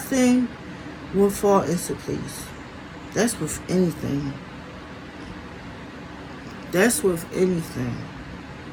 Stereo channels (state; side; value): identical; both; correlation 1.00